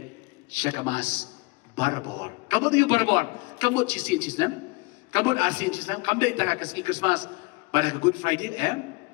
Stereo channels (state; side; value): quieter; right; 26.5 dB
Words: syakamas barbor. Kamu tu barbor. Kamu cisin cisnam. Kamu arsin cisnam. Kamu dah tak kasih Christmas pada Good Friday.